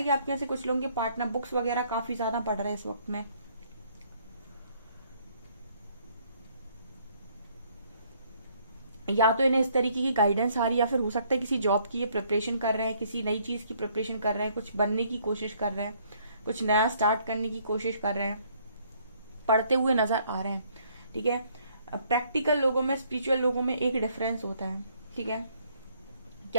कि आपके यहाँ से कुछ लोगों के पार्टनर बुक्स वगैरह काफी ज्यादा पढ़ रहे हैं इस वक्त में। या तो इन्हें इस तरीके की गाइडेंस आ रही है, या फिर हो सकता है किसी जॉब की ये प्रिपरेशन कर रहे हैं, किसी नई चीज की प्रिपरेशन कर रहे हैं, कुछ बनने की कोशिश कर रहे हैं, कुछ नया स्टार्ट करने की कोशिश कर रहे हैं, पढ़ते हुए नजर आ रहे हैं, ठीक है। प्रैक्टिकल लोगों में स्पिरिचुअल लोगों में एक डिफरेंस होता है, ठीक है।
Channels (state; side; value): inverted; both; correlation -0.65